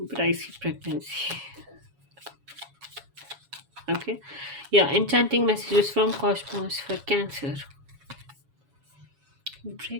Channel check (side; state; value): left; late; 7.2 ms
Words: I see pregnancy. Okay, yeah, enchanting messages from cosmos for Cancer.